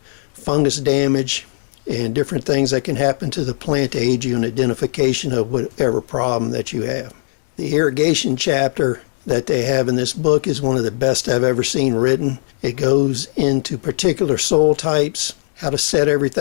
fungus damage, and different things that can happen to the plant to aid you in identification of whatever problem that you have. The irrigation chapter that they have in this book is one of the best I've ever seen written. It goes into particular soil types, how to set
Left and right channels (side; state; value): right; silent; digital silence